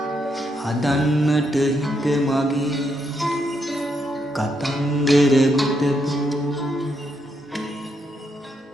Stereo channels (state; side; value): normal; both; correlation 0.78